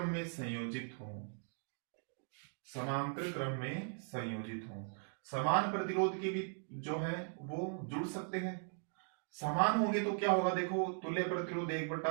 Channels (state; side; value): silent; left; 52 dB below the other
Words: में संयोजित हो, समांतर क्रम में संयोजित हो, समान प्रतिरोध के भी जो है वो जुड़ सकते हैं। समान होंगे तो क्या होगा, देखो तुल्य प्रतिरोध 1 बटा